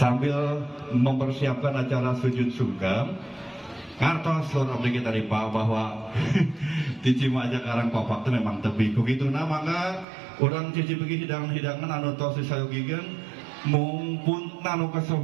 mempersiapkan acara sujud sungkem kartos lor abdi kita ripa bahwa di Cimaja Karangpapak itu memang tepi kukitu na mangga urang cicipeugi hidangan anu tos disayogigeun mumpun anu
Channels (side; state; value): left; drops out; at 10.1 s